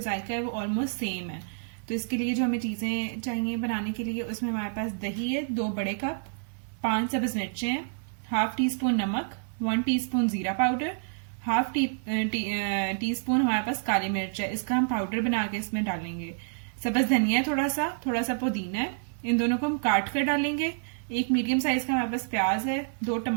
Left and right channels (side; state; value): left; silent; 59 dB below the other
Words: जायका है वो ऑलमोस्ट सेम है। तो इसके लिए जो हमें चीज़ें चाहिए बनाने के लिए, उसमें हमारे पास दही है 2 बड़े कप, 5 सब्ज मिर्चें हैं, हाफ टी स्पून नमक, 1 टीस्पून जीरा पाउडर, हाफ टी स्पून हमारे पास काली मिर्च है, इसका हम पाउडर बना के इसमें डालेंगे। सब्ज धनिया है, थोड़ा सा पुदीना है, इन दोनों को हम काट कर डालेंगे। एक मीडियम साइज का हमारे पास प्याज है, 2